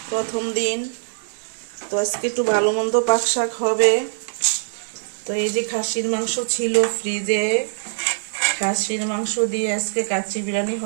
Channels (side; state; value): left; silent; digital silence